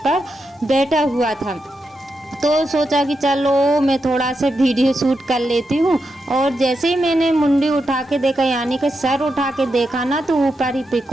बैठा हुआ था। तो सोचा कि चलो मैं थोड़ा सा वीडियो शूट कर लेती हूँ। और जैसे ही मैंने मुंडी उठा के देखा, यानी कि सर उठा के देखा ना, तो ऊपर ही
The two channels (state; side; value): normal; both; correlation 0.86